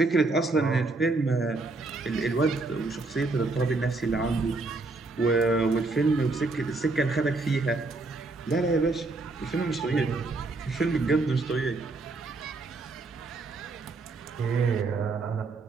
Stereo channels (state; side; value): quieter; left; 3.5 dB